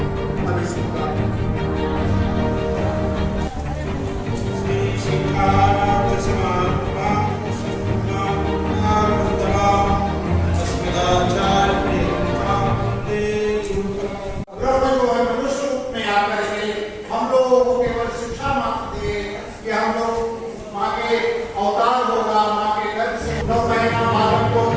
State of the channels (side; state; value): both; identical; correlation 1.00